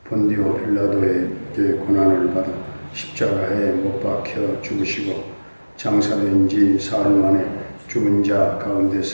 본디오 빌라도에게 고난을 받아 십자가에 못 박혀 죽으시고 장사된 지 사흘 만에 죽은 자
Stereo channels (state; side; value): inverted; both; correlation -1.00